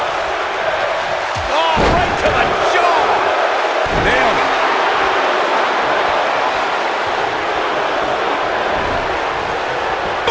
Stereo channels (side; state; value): both; identical; correlation 1.00